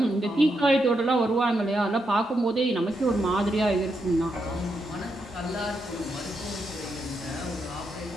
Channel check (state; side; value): normal; both; correlation 0.82